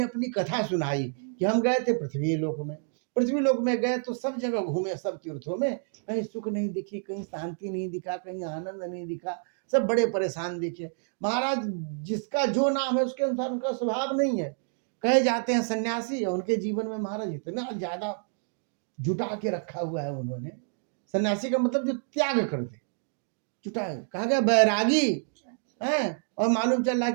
अपनी कथा सुनाई कि हम गए थे पृथ्वी लोक में, पृथ्वी लोक में गए तो सब जगह घूमे, सब तीर्थों में कहीं सुख नहीं दिखी, कहीं शांति नहीं दिखा, कहीं आनंद नहीं दिखा, सब बड़े परेशान दिखे। महाराज जिसका जो नाम है उसके अनुसार उनका स्वभाव नहीं है। कहे जाते हैं सन्यासी, उनके जीवन में महाराज इतना ज्यादा जुटा के रखा हुआ है उन्होंने। सन्यासी का मतलब जो त्याग कर दे, जुटा, कहा गया बैरागी है। और मालूम चल रहा है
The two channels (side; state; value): left; silent; 59 dB below the other